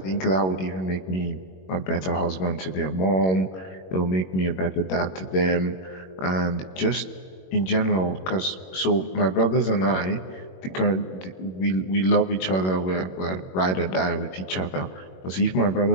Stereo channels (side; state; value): right; late; 21 ms